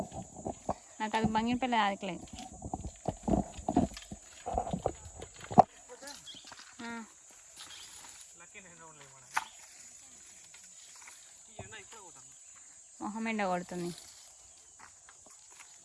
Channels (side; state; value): both; identical; correlation 1.00